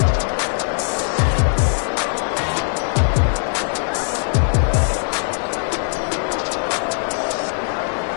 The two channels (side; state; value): right; silent; digital silence